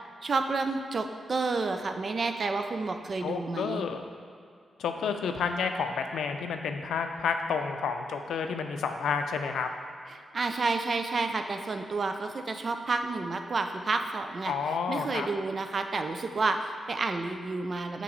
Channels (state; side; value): normal; both; correlation 0.79